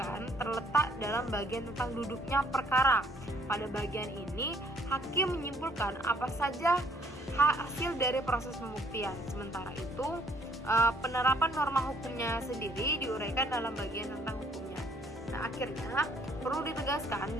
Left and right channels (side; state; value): both; normal; correlation 0.62